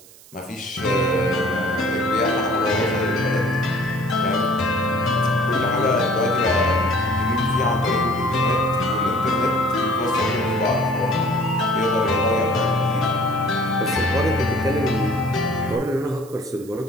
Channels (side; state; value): right; noise; hiss, 23 dB below the sound